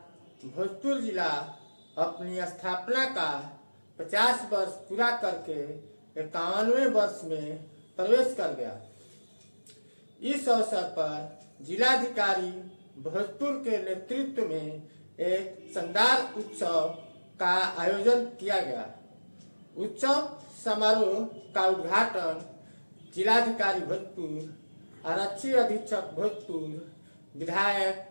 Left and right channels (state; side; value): inverted; both; correlation -1.00